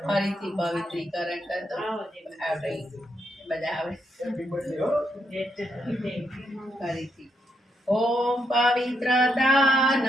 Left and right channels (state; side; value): normal; both; correlation 0.79